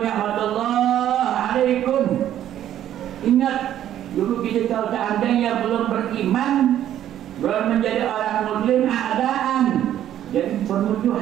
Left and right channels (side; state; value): left; quieter; 11.4 dB